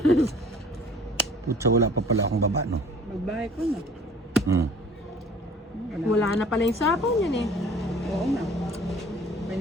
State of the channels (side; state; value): both; normal; correlation 0.50